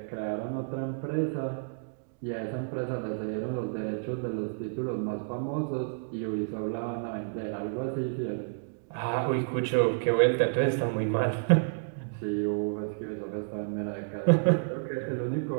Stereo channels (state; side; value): silent; left; digital silence